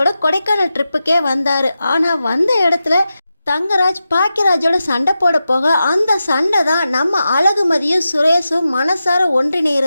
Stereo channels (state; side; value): inverted; both; correlation -0.91